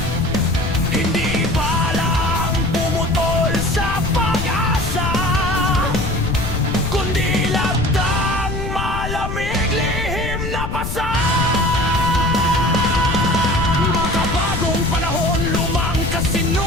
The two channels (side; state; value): left; noise; rumble, 5 dB below the sound